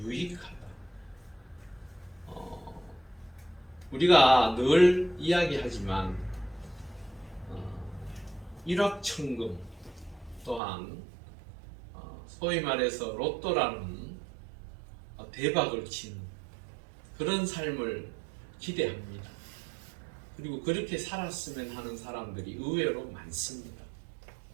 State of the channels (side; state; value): left; drops out; at 10.6 s